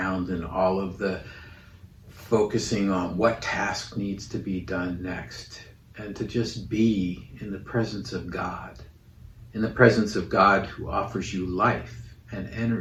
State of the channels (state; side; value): identical; both; correlation 1.00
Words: and all of the focusing on what task needs to be done next, and to just be in the presence of God, in the presence of God who offers you life and